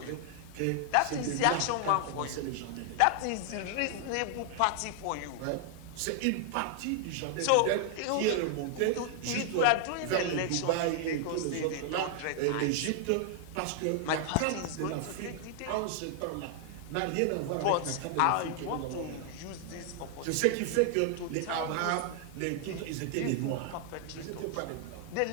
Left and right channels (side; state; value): both; different; correlation 0.00